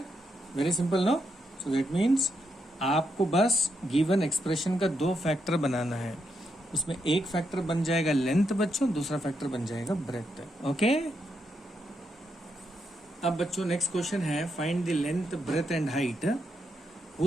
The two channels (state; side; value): normal; both; correlation 0.81